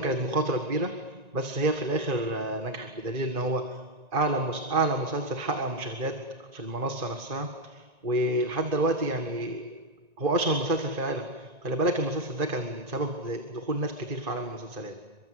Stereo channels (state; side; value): late; left; 1.9 ms